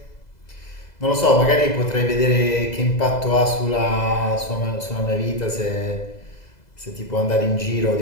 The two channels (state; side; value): late; right; 2.0 ms